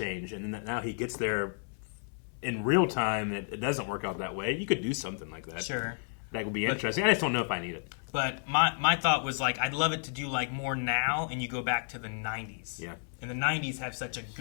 and then now he gets there in real time. It doesn't work out that way. You could do something like that. Sure. That would be interesting. I just don't know if I need it. But my thought was, like, I'd love it to do, like, more now, and you go back to the 90s. Yeah. And the 90s have such a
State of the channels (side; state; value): right; silent; 57 dB below the other